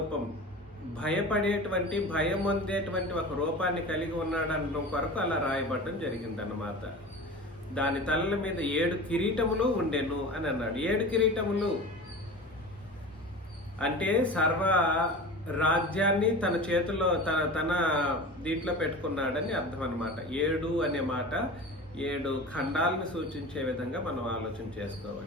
భయపడేటువంటి, భయం పొందేటువంటి ఒక రూపాన్ని కలిగి ఉన్నాడు అనడం కొరకు అలా రాయబడటం జరిగిందన్నమాట. దాని తలల మీద 7 కిరీటములు ఉండెను అని అన్నాడు. 7 కిరీటములు అంటే సర్వ రాజ్యాన్ని తన చేతిలో తన దీంట్లో పెట్టుకున్నాడని అర్థం అన్నమాట. 7 అనే మాట 7 ఖండాలను సూచించే విధంగా మనం ఆలోచన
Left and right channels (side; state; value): both; normal; correlation 0.33